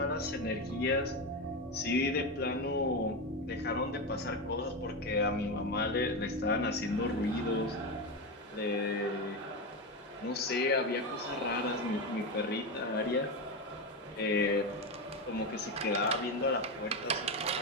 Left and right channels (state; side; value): normal; both; correlation 0.15